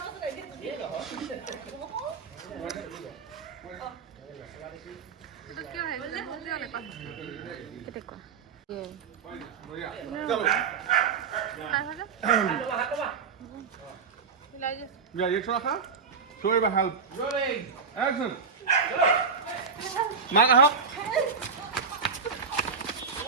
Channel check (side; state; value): left; quieter; 5.5 dB